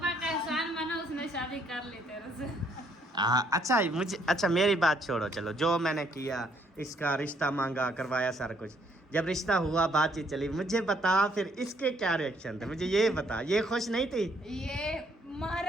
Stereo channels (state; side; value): normal; both; correlation 0.68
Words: का एहसान माना, उसने शादी कर ली तेरे से। अच्छा मुझे, अच्छा मेरी बात छोड़ो, चलो जो मैंने किया, इसका रिश्ता मांगा, करवाया सारा कुछ, जब रिश्ता हुआ, बातचीत चली, मुझे बता फिर इसके क्या रिएक्शन थे, मुझे ये बता। ये खुश नहीं थी? ये